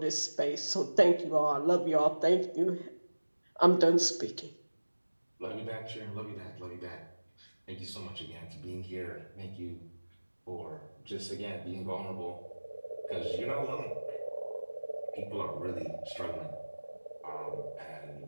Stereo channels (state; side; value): inverted; both; correlation -1.00